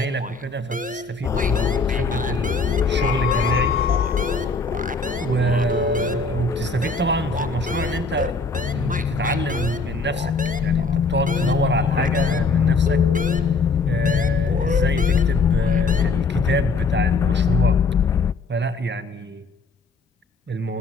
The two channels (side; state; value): right; quieter; 3.9 dB